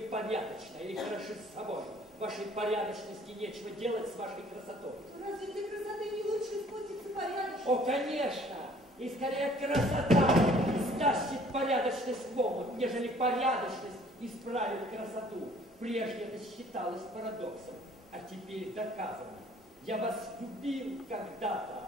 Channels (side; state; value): both; normal; correlation 0.56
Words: порядочны или хороши с собой, вашей порядочности нечего делать с вашей красотой. Разве для красоты не лучше спуститься порядочно? О, конечно! И скорее красота стащит порядочность в омут, нежели порядочность исправит красоту. Прежде это считалось парадоксом, а теперь доказано. Я вас любил когда-то.